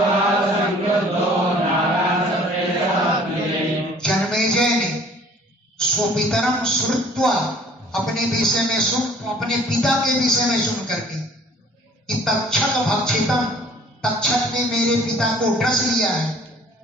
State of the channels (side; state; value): both; normal; correlation 0.53